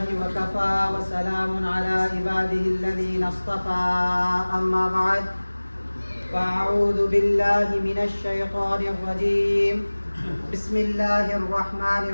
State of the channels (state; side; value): inverted; both; correlation -1.00